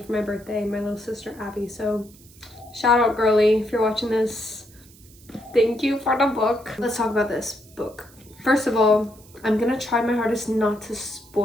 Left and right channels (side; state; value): right; noise; hiss, 25 dB below the sound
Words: my birthday, my little sister Abby. So shout out, girly, if you're watching this. Thank you for the book. Let's talk about this book. First of all, I'm gonna try my hardest not to